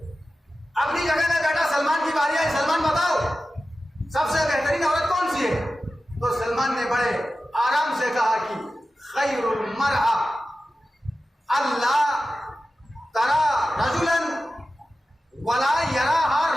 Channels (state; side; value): normal; both; correlation 0.94